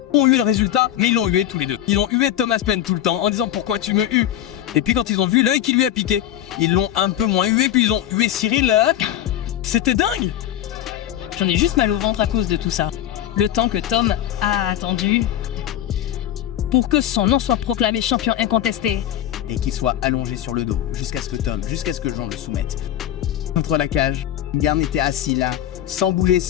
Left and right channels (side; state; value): right; quieter; 11.7 dB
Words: ont eu le résultat, mais ils l'ont hué tous les deux. Ils ont hué Thomas Paine tout le temps en disant pourquoi tu me hues. Et puis quand ils ont vu l'œil qui lui a piqué, ils l'ont un peu moins hué, puis ils ont hué Cyril. C'était dingue. J'en ai juste mal au ventre à cause de tout ça. Le temps que Tom a attendu pour que son nom soit proclamé champion incontesté. Et qu'il soit allongé sur le dos, jusqu'à ce que Jean le soumette. Contre la cage, Garn était assis là, sans bouger,